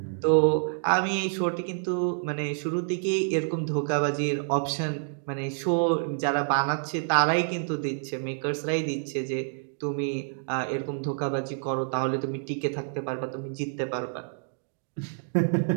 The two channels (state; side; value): silent; left; digital silence